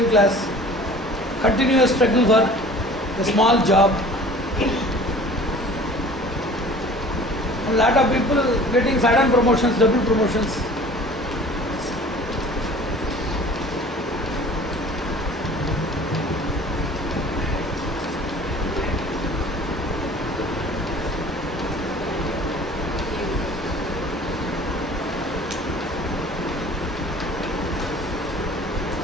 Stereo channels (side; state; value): both; normal; correlation 0.46